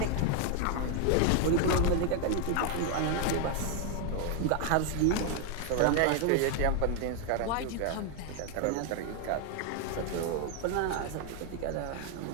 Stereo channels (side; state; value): both; different; correlation 0.01